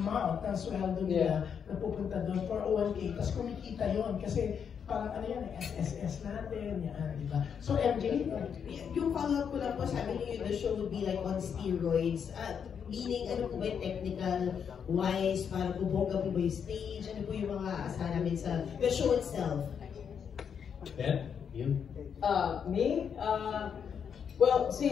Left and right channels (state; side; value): quieter; right; 7.3 dB